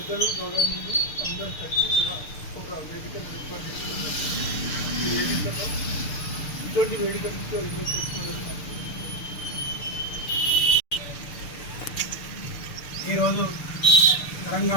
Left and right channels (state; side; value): late; right; 6.7 ms